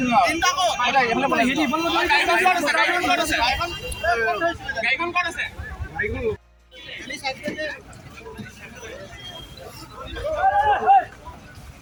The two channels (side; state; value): both; identical; correlation 1.00